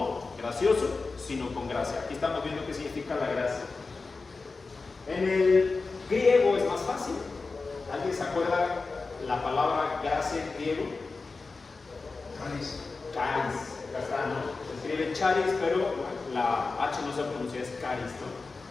gracioso, sino con gracia. Aquí estamos viendo qué significa la gracia. En el griego es más fácil. ¿Alguien se acuerda la palabra gracia en griego? Caris. Caris, acá está, ¿no? Se escribe charis, pero la H no se pronuncia, es caris, ¿no?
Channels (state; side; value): quieter; right; 4.0 dB